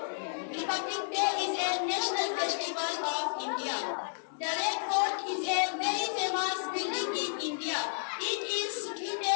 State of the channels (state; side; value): silent; right; digital silence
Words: Republic Day is a national festival of India. The Red Fort is a very famous building in India. It is